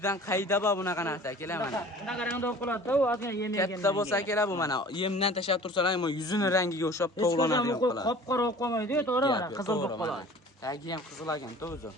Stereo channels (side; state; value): both; normal; correlation 0.45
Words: dan qayda bor bunaqa narsa akalar mana. Bunaqa rangda qiladi-da, u ozgina yem yegan. Katta bo'lsa akalar bu mana yemdan tashlab tursalar ham yuzini rangiga o'xshab tovlanadi yo'qlar. Qop-qora bo'lib qolmaydi-ku, to'g'ri mana, qizil bo'lib qoladi. Tagi ham qizil ekan, o'zi.